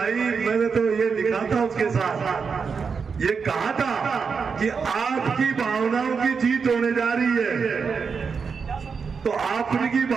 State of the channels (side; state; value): left; quieter; 5.6 dB